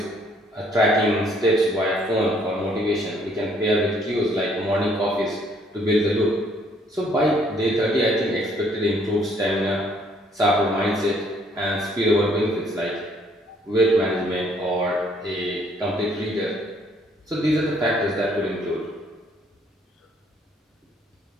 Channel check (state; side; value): normal; both; correlation 0.64